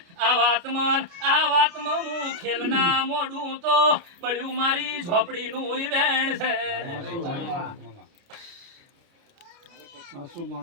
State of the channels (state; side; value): late; left; 29 ms